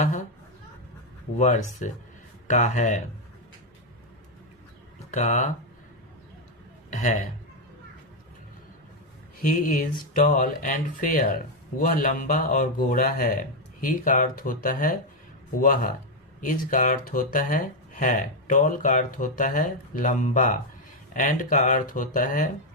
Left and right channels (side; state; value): both; normal; correlation 0.02